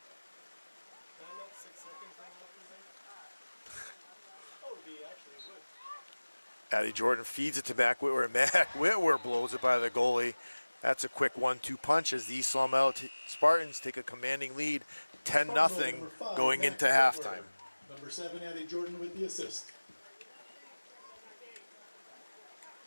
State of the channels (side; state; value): both; inverted; correlation -1.00